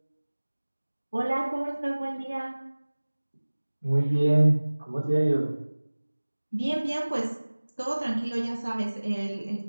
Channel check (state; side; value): inverted; both; correlation -1.00